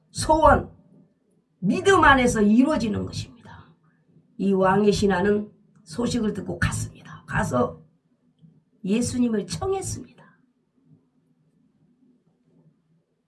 소원, 믿음 안에서 이루어지는 것입니다. 이 왕의 신하는 소식을 듣고 갔습니다. 가서 예수님을 청했습니다.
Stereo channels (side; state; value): both; identical; correlation 1.00